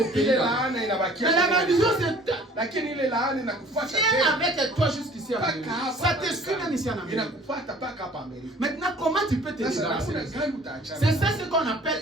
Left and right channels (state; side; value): normal; both; correlation 0.51